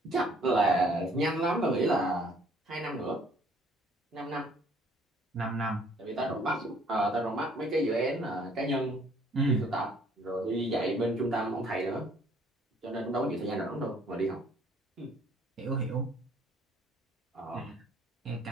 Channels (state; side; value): normal; both; correlation 0.60